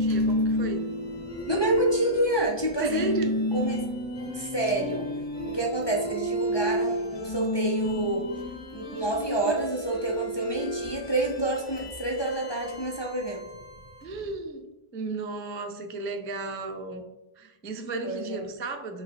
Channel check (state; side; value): late; right; 1.2 ms